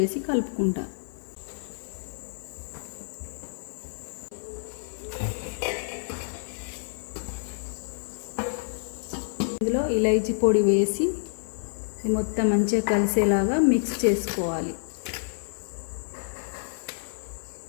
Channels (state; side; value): silent; right; 56 dB below the other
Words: కలుపుకుంటా. ఇందులో ఇలైచీ పొడి వేసి మొత్తం మంచిగా కలిసేలాగా మిక్స్ చేసుకోవాలి.